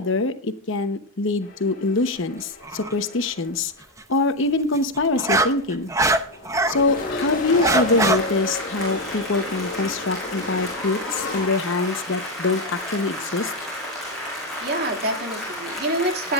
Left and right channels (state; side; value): normal; both; correlation 0.08